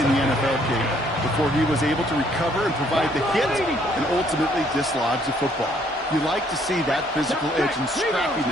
the NFL game before he was able to recover and provide the hit and ultimately dislodge the football. You like to see that physical edge and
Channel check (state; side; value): normal; both; correlation 0.65